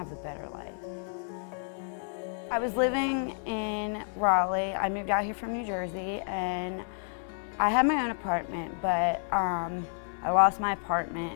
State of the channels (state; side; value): silent; right; digital silence